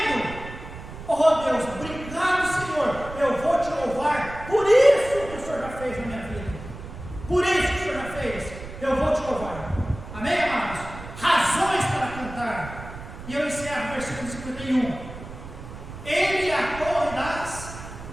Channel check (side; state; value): right; noise; rumble, 13 dB below the sound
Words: Oh Deus, obrigado, Senhor, eu vou te louvar por isso que o Senhor já fez na minha vida. Por isso que o Senhor já fez, eu vou te louvar. Amém, amados? Razões para cantar. E eu encerro o versículo 51. Ele é a torre das